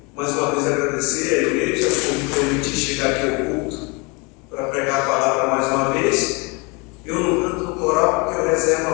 mais uma vez agradecer à igreja por me permitir chegar aqui ao culto para pregar a palavra mais uma vez. Eu não canto no coral porque eu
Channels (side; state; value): right; quieter; 29.1 dB